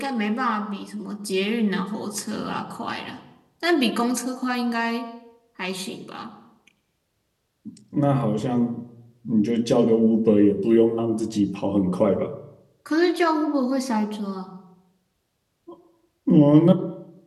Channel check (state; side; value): identical; both; correlation 1.00